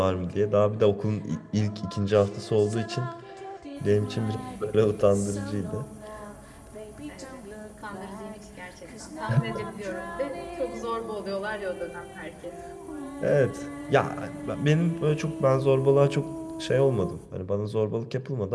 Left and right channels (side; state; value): both; identical; correlation 1.00